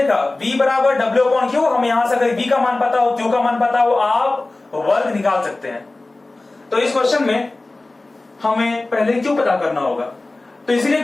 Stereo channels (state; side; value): quieter; right; 3.0 dB